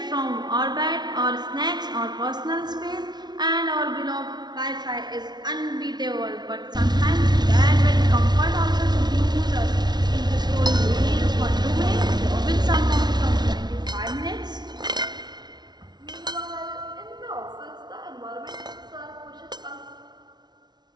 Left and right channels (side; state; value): left; late; 0.20 ms